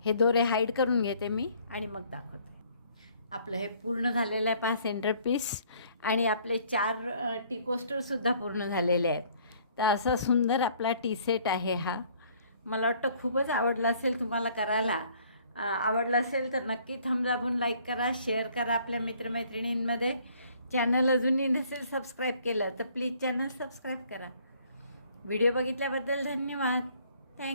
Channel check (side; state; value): both; inverted; correlation -0.60